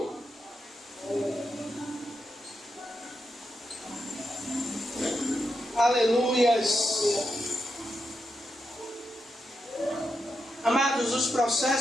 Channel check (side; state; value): both; normal; correlation 0.85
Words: Aleluias. Amados, os